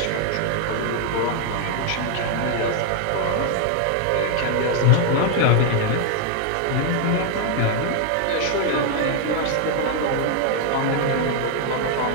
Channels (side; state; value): both; different; correlation 0.00